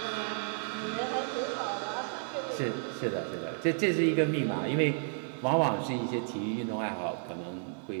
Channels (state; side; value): silent; left; 56 dB below the other